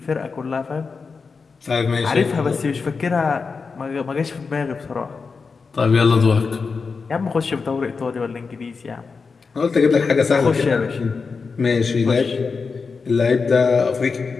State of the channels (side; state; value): right; quieter; 4.9 dB